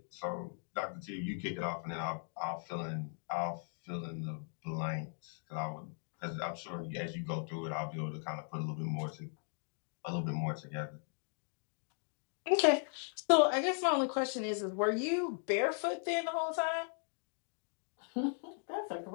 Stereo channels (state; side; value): silent; right; 52 dB below the other